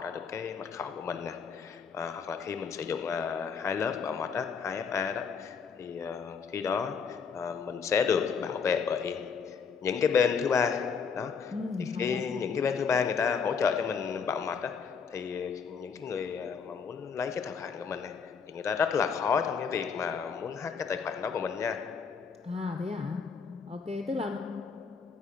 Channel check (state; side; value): quieter; right; 6.1 dB